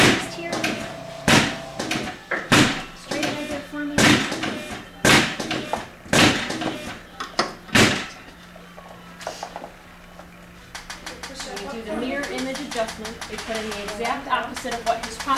here. adjustment. We put in the exact opposite of what his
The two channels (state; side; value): identical; both; correlation 1.00